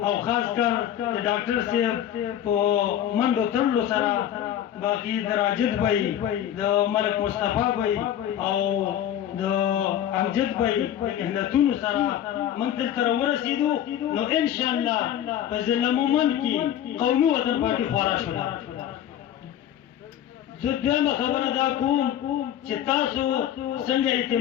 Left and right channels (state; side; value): quieter; right; 10.9 dB